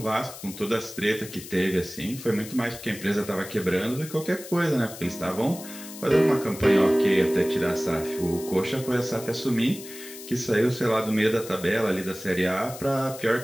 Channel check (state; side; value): noise; left; hiss, 14 dB below the sound